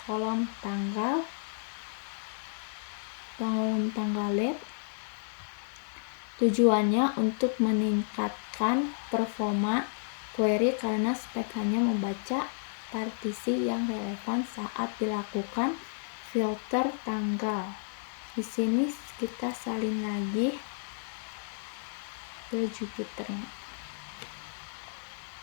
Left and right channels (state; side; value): silent; right; digital silence